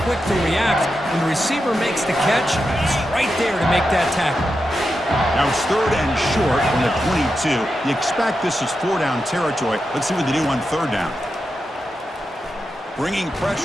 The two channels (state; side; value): normal; both; correlation 0.88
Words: quick to react, when the receiver makes the catch, he's right there to make that tackle. Now it's 3rd and short from the 22. You expect this is 4-down territory. Let's see what they do on 3rd down. Bringing